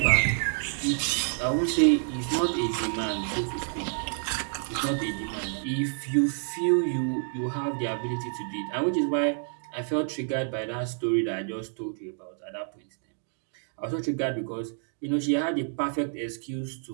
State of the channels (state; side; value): silent; left; digital silence